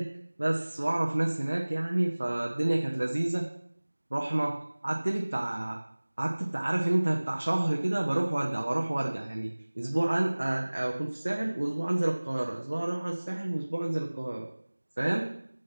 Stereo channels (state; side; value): inverted; both; correlation -1.00